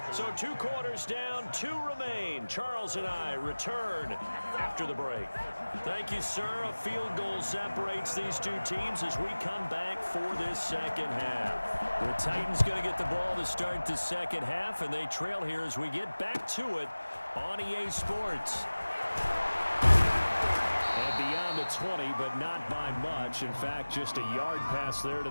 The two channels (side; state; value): both; inverted; correlation -1.00